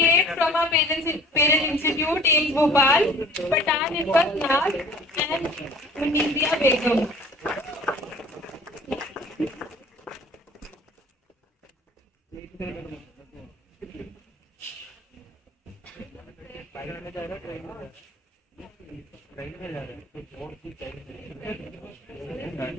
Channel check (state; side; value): normal; both; correlation 0.48